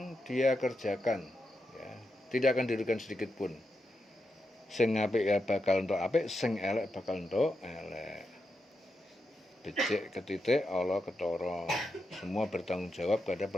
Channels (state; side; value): normal; both; correlation 0.86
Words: dia kerjakan, ya. Tidak akan dirugikan sedikit pun. Sing apik ya bakal entuk apik, sing elek bakal entuk elek. Becik ketitik Allah ketara. Semua bertanggung jawab pada